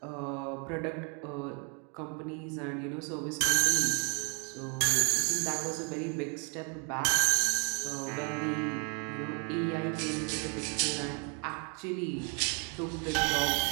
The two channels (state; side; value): quieter; left; 38.3 dB